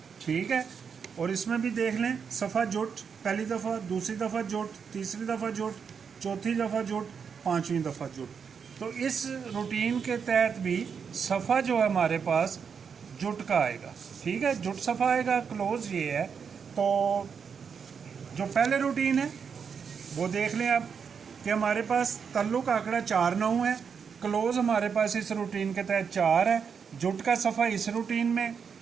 ठीक है। और इसमें भी देख लें सफ़ा जुट, पहली दफ़ा, दूसरी दफ़ा जुट, तीसरी दफ़ा जुट, चौथी दफ़ा जुट, पाँचवीं दफ़ा जुट। तो इस रूटीन के तहत भी सफ़ा जो है हमारे पास जुट का आएगा, ठीक है, जुट सफ़ा आएगा। क्लोज़ ये है। तो जो पहले रूटीन है वो देख लें आप कि हमारे पास तल्लुक आंकड़ा 4 9 है, क्लोज़ हमारे पास इस रूटीन के तहत 4 है, जुट का सफ़ा इस रूटीन में,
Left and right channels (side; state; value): left; quieter; 6.5 dB